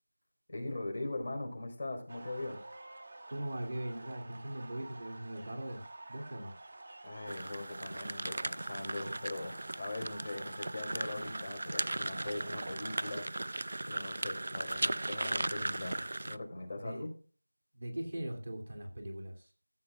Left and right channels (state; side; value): inverted; both; correlation -0.97